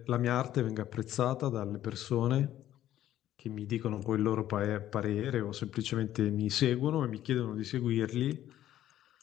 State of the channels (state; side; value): quieter; right; 12.5 dB